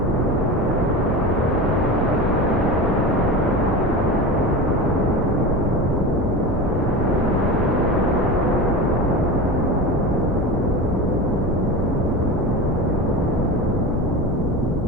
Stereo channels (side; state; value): both; normal; correlation 0.27